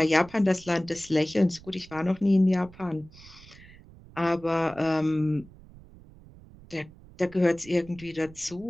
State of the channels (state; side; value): noise; right; rumble, 21 dB below the sound